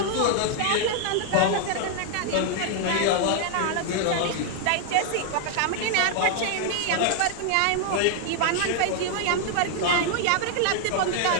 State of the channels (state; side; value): different; both; correlation 0.00